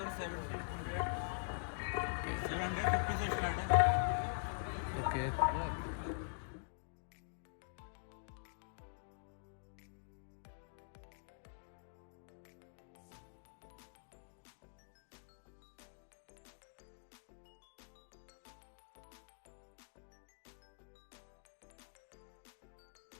750 से स्टार्ट है। ओके,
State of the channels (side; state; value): right; silent; digital silence